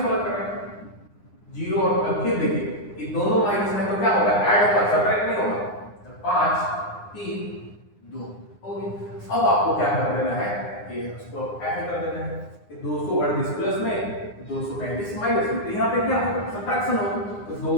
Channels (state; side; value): late; right; 9.8 ms